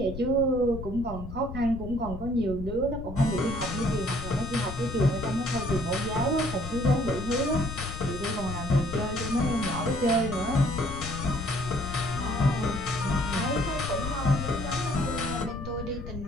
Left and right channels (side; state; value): left; noise; rumble, 9 dB below the sound